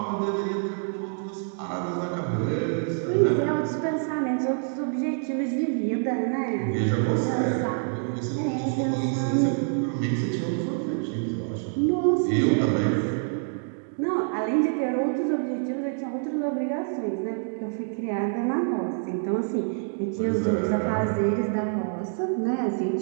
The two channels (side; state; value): left; silent; 61 dB below the other